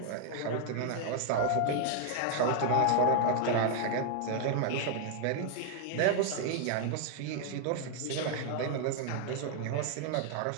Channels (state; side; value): different; both; correlation 0.00